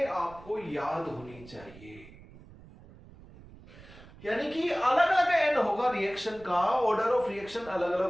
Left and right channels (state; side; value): noise; right; rumble, 20 dB below the sound